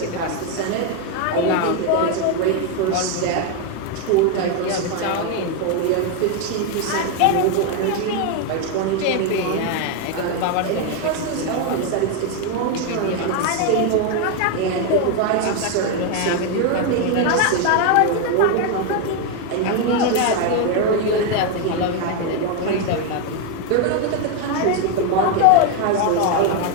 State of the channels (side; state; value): both; different; correlation 0.01